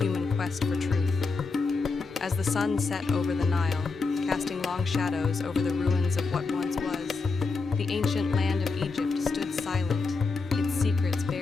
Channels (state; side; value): quieter; right; 4.2 dB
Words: quest for truth. As the sun set over the Nile, casting long shadows over the ruins of what once was, the ancient land of Egypt stood silent, its secrets